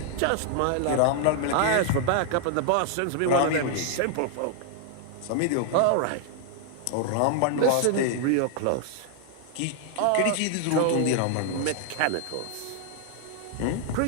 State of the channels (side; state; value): both; different; correlation 0.00